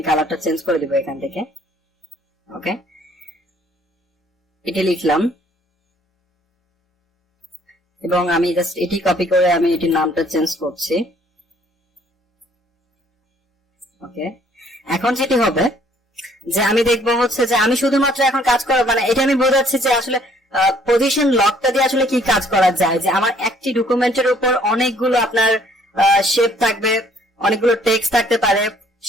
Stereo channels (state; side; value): normal; both; correlation 0.61